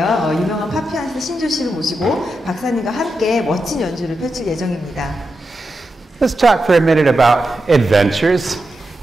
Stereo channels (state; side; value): normal; both; correlation 0.88